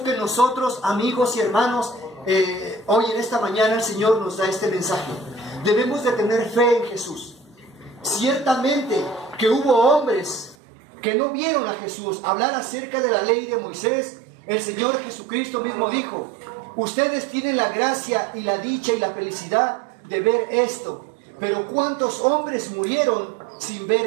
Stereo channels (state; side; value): drops out; left; at 10.6 s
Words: que nosotros, amigos y hermanos, hoy en esta mañana el Señor nos da este mensaje. Debemos de tener fe en Jesús. Ciertamente que hubo hombres que no vieron a Jesús hablar acerca de la ley de Moisés. El Señor Jesucristo mismo dijo: ustedes tienen la gracia y la dicha y la felicidad de ver esto. Pero ¿cuántos hombres murieron sin